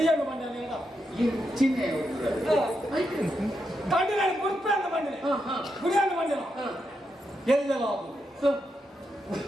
ಬಂದ ಚಿಹ್ನೆ ಕಂಡು ನಾನು ಗುಡ್ಪೆ ಅಂತ ಬಂದಿನಿ ಗುಡಿಯನ್ನು ಬಂದಿನ ಎಲ್ಲೆಲ್ಲ ಆಗುದು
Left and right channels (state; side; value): normal; both; correlation 0.84